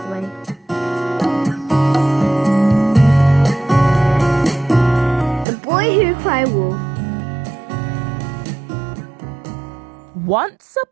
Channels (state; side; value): drops out; left; at 5.5 s